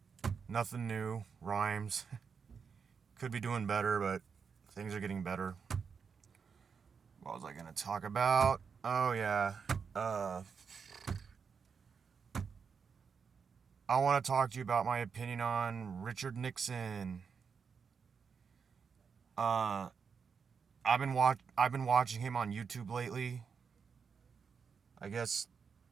Nothing new. Rhymes. Could be doing better, but things are getting better. What was I gonna talk about? Oh yeah. Uh I want to talk to you about my opinion on Richard Nixon. Uh I've been watching him on YouTube lately. I guess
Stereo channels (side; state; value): left; quieter; 6.0 dB